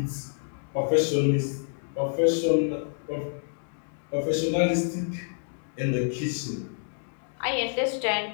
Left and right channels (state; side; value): silent; right; digital silence